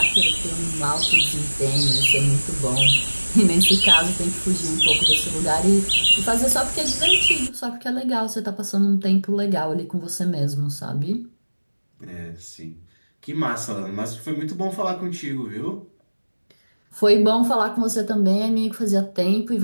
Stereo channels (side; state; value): both; inverted; correlation -1.00